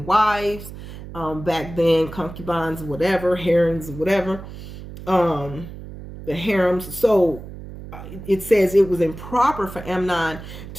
back then, concubines, whatever, harems, whatever, the harems. So it says it was improper for Amnon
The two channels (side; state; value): right; noise; hum, 13 dB below the sound